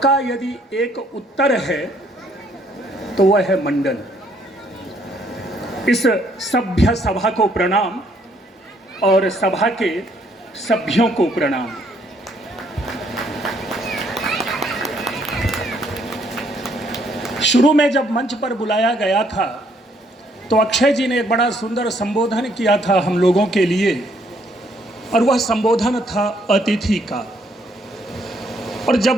यदि एक उत्तर है तो वह है मंडन। इस सभ्य सभा को प्रणाम और सभा के सभ्यों को प्रणाम। शुरू में जब मंच पर बुलाया गया था तो अक्षय जी ने एक बड़ा सुंदर संबोधन किया था हम लोगों के लिए, और वह संबोधन था अतिथि का। और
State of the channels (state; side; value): normal; both; correlation 0.68